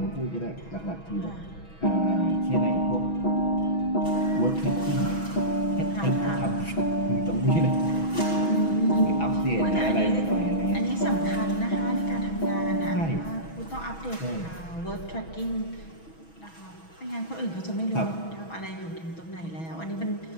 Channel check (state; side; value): late; right; 6.2 ms